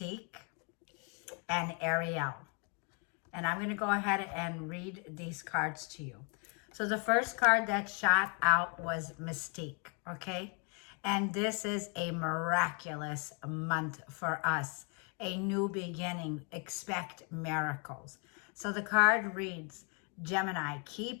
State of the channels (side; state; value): right; quieter; 36.9 dB